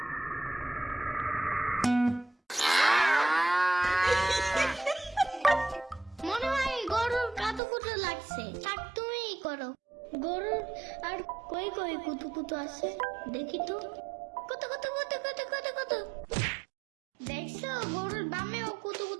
মনে হয় গরুর কাতুকুতু লাগছে, থাক তুমিই করো। গরুর আর কই কই কুতুকুতু আছে দেখি তো। কত কত কত কত কত কত, দেখছো গরুর বামেও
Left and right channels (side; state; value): left; drops out; at 7.6 s